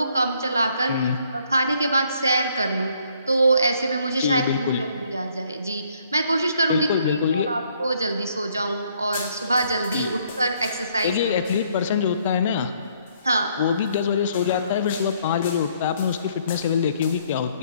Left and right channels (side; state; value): both; inverted; correlation -0.66